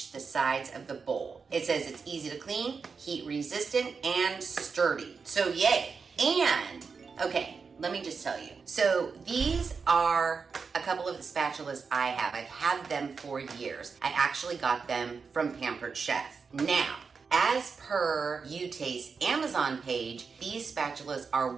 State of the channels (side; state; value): left; quieter; 5.2 dB